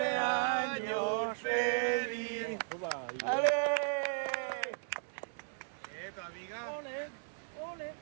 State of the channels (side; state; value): left; silent; digital silence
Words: feliz! ¡Ale! Tu amiga. Ole, ole.